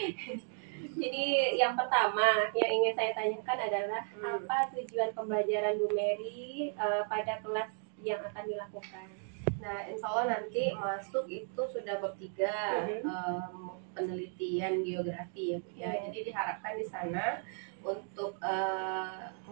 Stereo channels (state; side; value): silent; left; 54 dB below the other